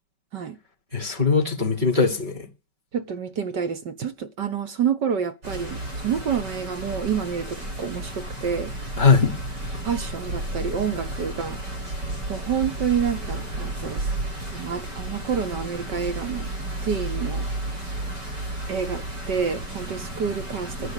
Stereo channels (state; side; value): late; left; 5.2 ms